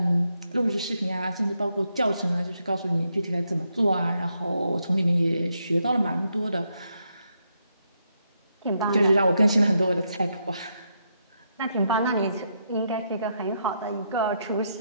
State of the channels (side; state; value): both; inverted; correlation -0.80